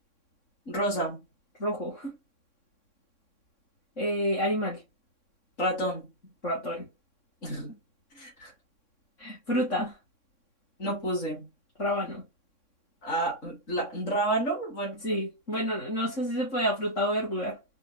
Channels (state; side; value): late; right; 3.6 ms